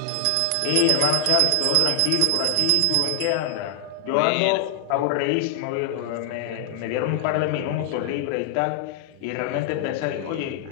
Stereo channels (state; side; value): different; both; correlation 0.00